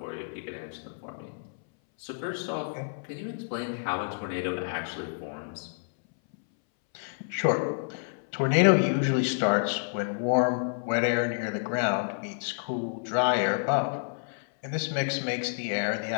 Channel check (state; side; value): silent; right; 59 dB below the other